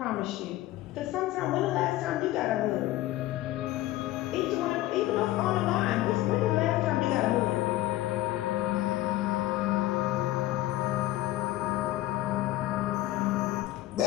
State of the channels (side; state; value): right; quieter; 16.1 dB